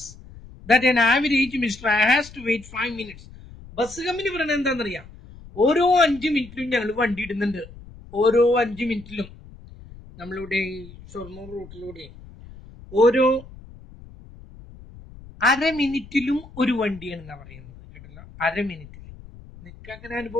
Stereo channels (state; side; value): noise; left; rumble, 19 dB below the sound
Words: that an average Mr. has to wait 5 minutes. Bus company പറയുന്നത് എന്താണെന്നറിയാം? ഓരോ 5 മിനിറ്റിലും ഞങ്ങൾ വണ്ടി ഇടുന്നുണ്ട്. ഓരോ 5 മിനിറ്റിലും നമ്മളിവിടെ ഷൊർണൂർ റൂട്ടിലൂടെ ഓരോ അര മിനിറ്റിലും ഒരു വണ്ടിയാണെന്നാണ് പറയുന്നത്. കേട്ടല്ലോ, അര മിനിറ്റിൽ. നിങ്ങൾക്ക് അങ്ങനെ